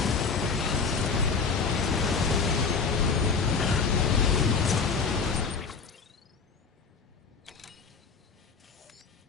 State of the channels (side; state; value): right; quieter; 5.1 dB